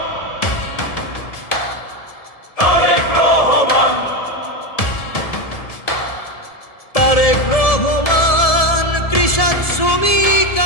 তারেক রহমান কৃষক শ্রমিক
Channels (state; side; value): late; right; 1.7 ms